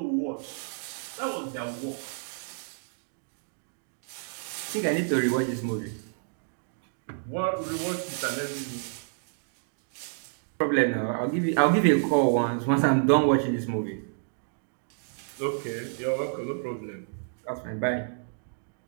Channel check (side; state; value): left; silent; digital silence